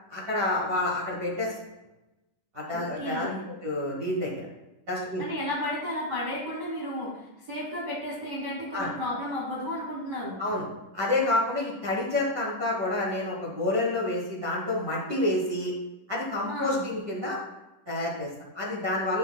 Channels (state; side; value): late; left; 10 ms